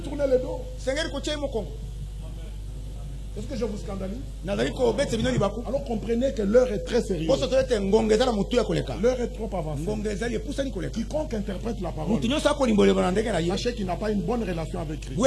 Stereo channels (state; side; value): identical; both; correlation 1.00